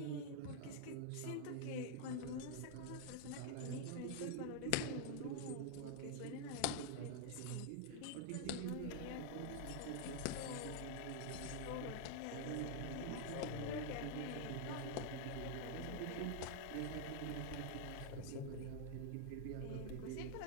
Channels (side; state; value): both; different; correlation 0.00